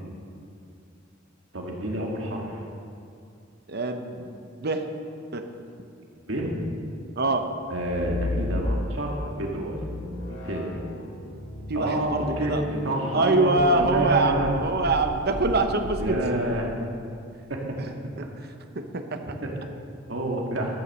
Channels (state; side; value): normal; both; correlation 0.11